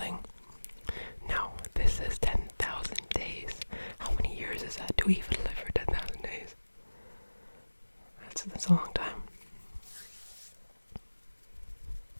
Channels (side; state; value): both; inverted; correlation -1.00